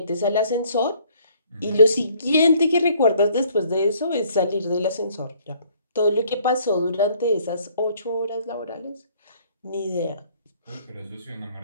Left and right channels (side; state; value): both; inverted; correlation -0.60